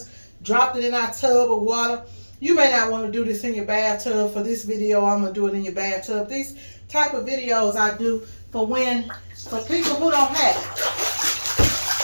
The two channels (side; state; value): both; inverted; correlation -1.00